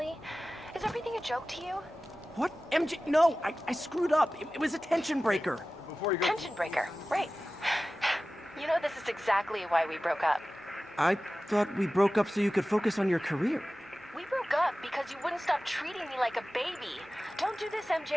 Is everything a joke to you? What? MJ? No, I screwed up. It was a tension breaker. Before you go... Tension breaker, right. You know, this is exactly why we broke up. I thought we broke up so you could focus on your career. We broke up because you wouldn't stop treating me like a baby. Don't do this,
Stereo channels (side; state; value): both; normal; correlation 0.96